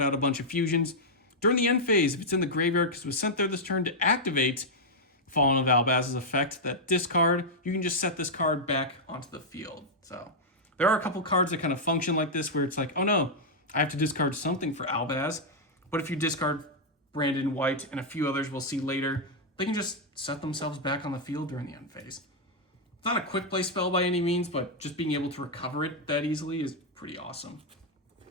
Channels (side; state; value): both; normal; correlation -0.04